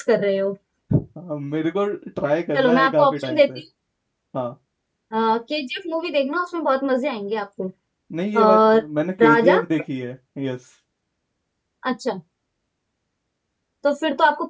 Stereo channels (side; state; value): both; identical; correlation 1.00